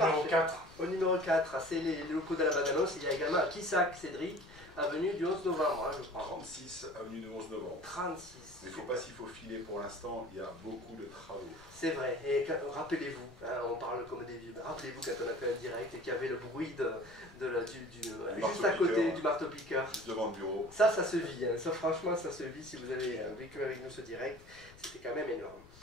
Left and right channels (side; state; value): left; noise; rumble, 22 dB below the sound